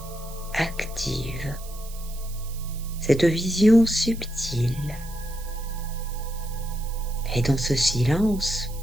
active cette vision subtile. Et dans ce silence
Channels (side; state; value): right; noise; hiss, 17 dB below the sound